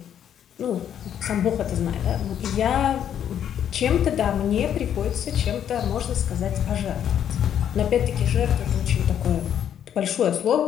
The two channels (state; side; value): quieter; right; 9.5 dB